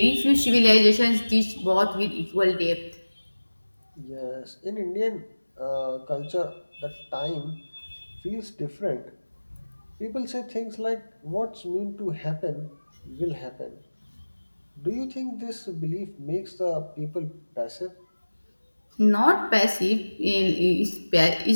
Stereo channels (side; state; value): both; inverted; correlation -1.00